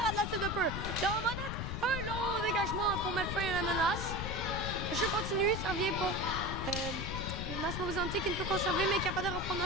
rate la cible de peu. Laurent Monette, un long dégagement pour mettre fin à la menace. Le jeu continue, ça revient pour Massimo Visante qui ne peut conserver mais capable de reprendre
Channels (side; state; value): left; noise; rumble, 4 dB below the sound